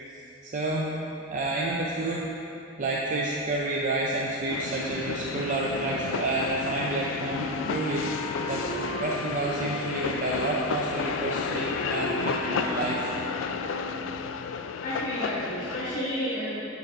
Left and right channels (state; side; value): normal; both; correlation 0.09